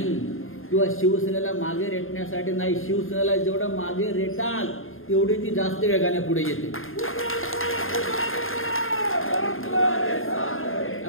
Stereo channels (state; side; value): late; right; 0.60 ms